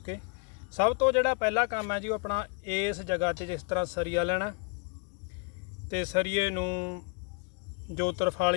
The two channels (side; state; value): right; quieter; 34.4 dB